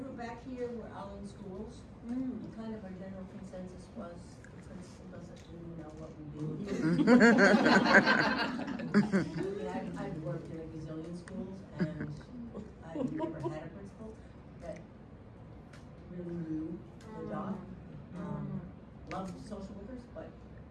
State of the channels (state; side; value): identical; both; correlation 1.00